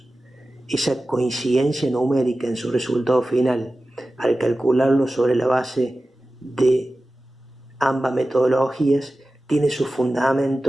Esa coincidencia numérica en su resultado final, al calcularlo sobre la base de ambas metodologías, tiene su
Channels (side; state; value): both; normal; correlation 0.95